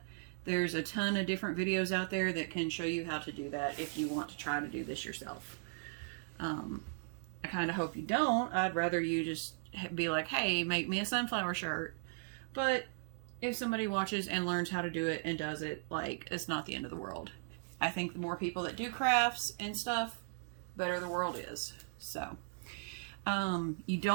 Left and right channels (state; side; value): silent; left; digital silence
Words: There's a ton of different videos out there that can show you how to do that if you want to try to do this yourself. I kind of hope you don't. I'd rather you just be like, hey, make me a sunflower shirt. But if somebody watches and learns how to do it and does it, like, it's not the end of the world. I think the more people that do crafts and stuff, better the world is. So, you